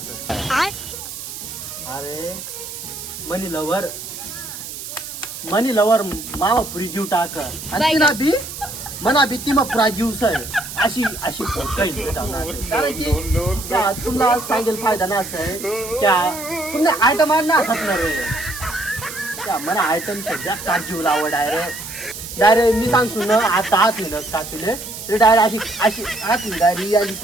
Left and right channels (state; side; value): noise; right; hiss, 10 dB below the sound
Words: अरे मनी लवर मामा पुरी जीव टाक आणि तिला बी मना बी ती मग पुरा जीव सर अशी अशी काही कारण की तुम्हाला सांगेल फायदा ना असं आहे क्या तुम्ही आयटम ना असणार त्या मला आयटम सध्या का जीव लावं डायरेक्ट मी सांगतो ना आता हात ना काचुले ते डायरेक्ट अशी हात डायरी